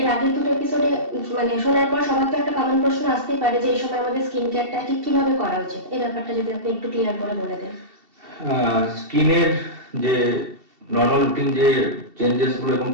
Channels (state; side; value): late; left; 2.7 ms